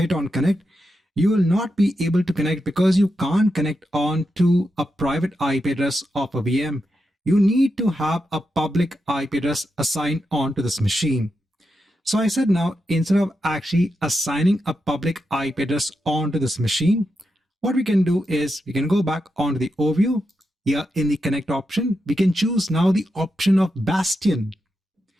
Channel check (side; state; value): both; normal; correlation 0.87